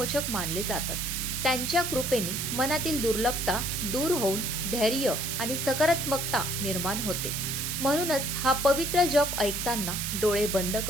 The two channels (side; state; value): right; noise; hiss, 2 dB below the sound